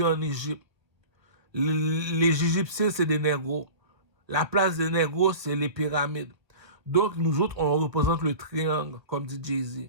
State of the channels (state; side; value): late; left; 1.2 ms